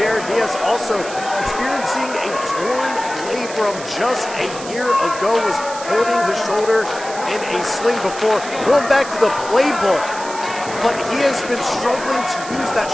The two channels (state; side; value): noise; right; hiss, 13 dB below the sound